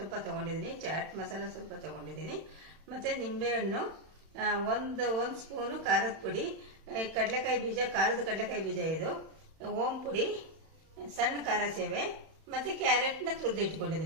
ತಗೊಂಡಿದ್ದೀನಿ. ಚಾಟ್ ಮಸಾಲ ಸ್ವಲ್ಪ ತಗೊಂಡಿದ್ದೀನಿ. ಮತ್ತೆ ನಿಂಬೆಹಣ್ಣು, ಒಂದು ಸ್ಪೂನು ಖಾರದ ಪುಡಿ, ಕಡಲೆಕಾಯಿ ಬೀಜ, ಖಾರದ ಕಡಲೆಕಾಯಿ ಬೀಜ, ಇದು ಓಂ ಪುಡಿ, ಸಣ್ಣ ಖಾರ ಸೇವೆ, ಮತ್ತೆ ಕ್ಯಾರೆಟ್ನ ತುರಿದು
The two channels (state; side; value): late; left; 31 ms